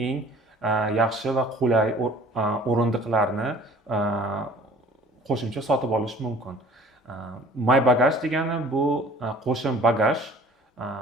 eng yaxshi va qulay o'rindiqlarni qo'shimcha sotib olish mumkin. MyBagage degani bu qo'shim bagaj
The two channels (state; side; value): normal; both; correlation 0.50